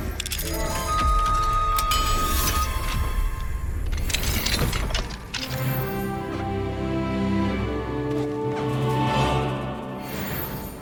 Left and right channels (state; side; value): identical; both; correlation 1.00